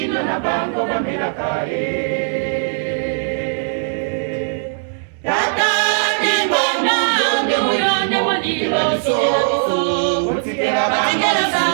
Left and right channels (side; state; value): left; silent; digital silence